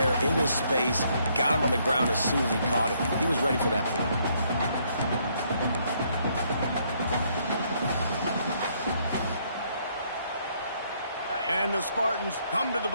in his space, got him on the ground as soon as he caught it. He was ready for that play. And the Spartans come to the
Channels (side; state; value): both; inverted; correlation -0.70